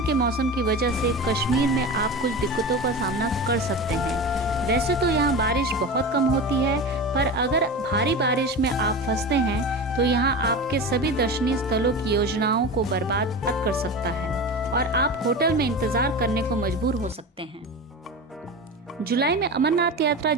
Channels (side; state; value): both; normal; correlation 0.28